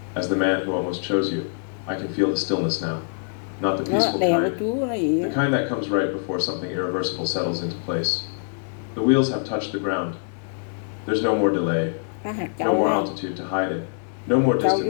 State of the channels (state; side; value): silent; right; 62 dB below the other